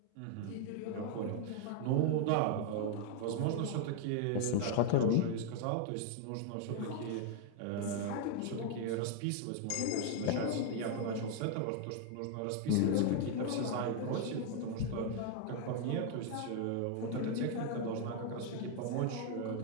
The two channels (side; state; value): both; different; correlation 0.00